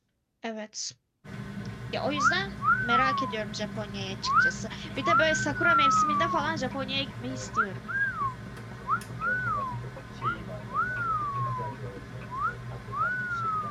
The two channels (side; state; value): both; identical; correlation 1.00